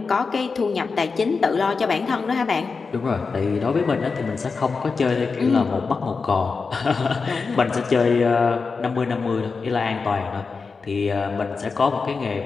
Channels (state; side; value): quieter; right; 4.7 dB